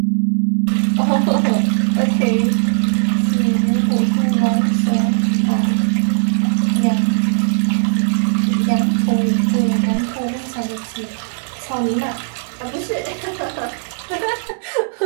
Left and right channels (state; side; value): silent; left; 68 dB below the other